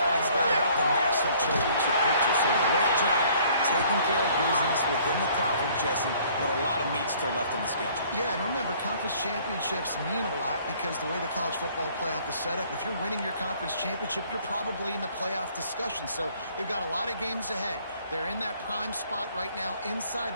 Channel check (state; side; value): inverted; both; correlation -0.58